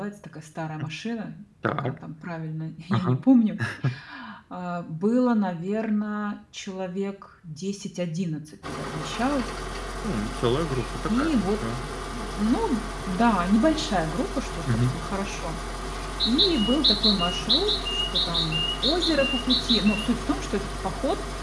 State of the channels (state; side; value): identical; both; correlation 1.00